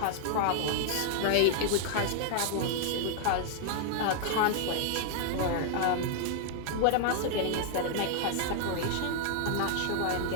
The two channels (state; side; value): different; both; correlation -0.01